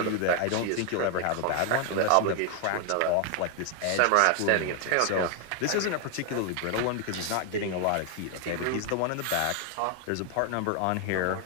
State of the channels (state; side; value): different; both; correlation 0.01